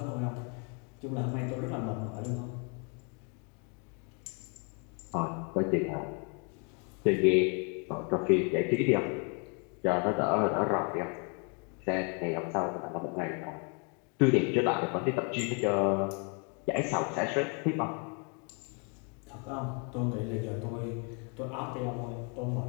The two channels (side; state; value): right; quieter; 36.7 dB